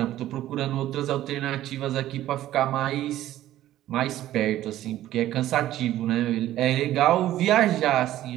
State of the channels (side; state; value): left; quieter; 13.7 dB